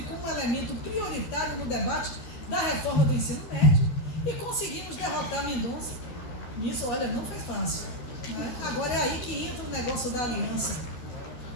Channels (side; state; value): right; late; 13 ms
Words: como um elemento prioritário no debate da reforma do ensino médio e conseguimos derrotar Mendonça. Isso, olha, não foi fácil. Né? Agora é aí que entra o negócio da aliança.